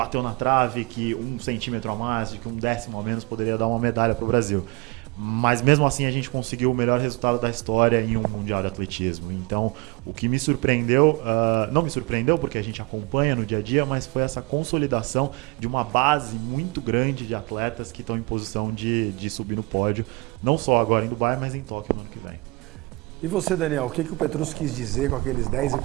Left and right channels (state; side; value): quieter; left; 25.1 dB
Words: na trave, que 1 centímetro a mais, que 1/10 a menos poderia dar uma medalha para o Brasil. Mas mesmo assim a gente conseguiu o melhor resultado da história em um Mundial de Atletismo. Então, o que me surpreendeu, não me surpreendeu porque a gente acompanha no dia a dia, mas foi essa consolidação de uma base muito grande de atletas que estão em posição de subir no pódio, não só agora em Dubai, mas em Tóquio no ano que vem. E você, Daniel, o que o Petrus quis dizer com aqueles